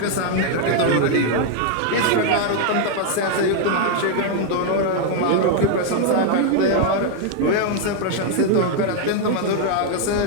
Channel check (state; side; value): different; both; correlation 0.00